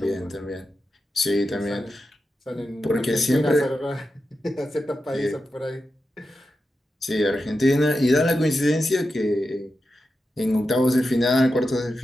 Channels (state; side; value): normal; both; correlation 0.90